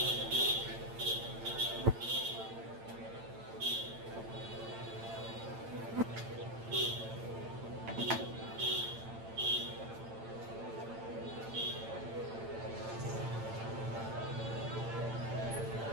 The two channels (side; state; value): left; late; 8.9 ms